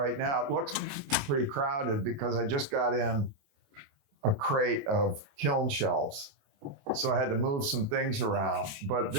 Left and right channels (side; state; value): left; late; 28 ms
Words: now. It looks pretty crowded because I just got in a crate of kiln shelves. So I had to move some things around. But